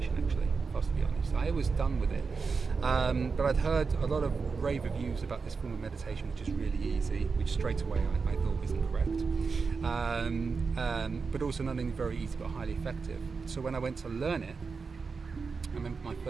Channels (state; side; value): quieter; left; 4.9 dB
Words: actually, if I was to be honest. I was done with it. But I'd heard a lot of rave reviews about this form of meditation, which is really easy, which straight away I thought isn't correct. But also not only very easy, but highly effective. So when I went to learn it, I remember my